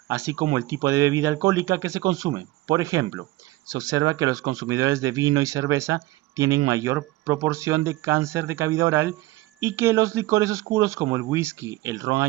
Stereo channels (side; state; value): left; quieter; 18.4 dB